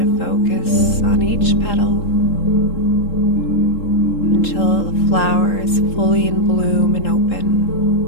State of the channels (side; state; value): right; late; 3.7 ms